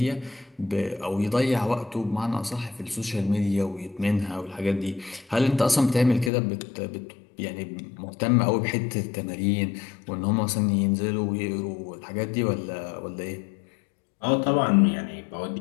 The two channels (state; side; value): drops out; right; at 6.3 s